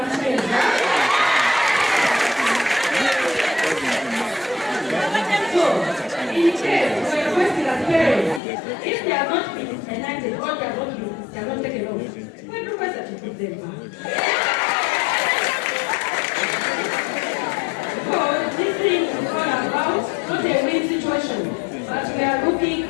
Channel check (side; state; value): right; drops out; at 8.4 s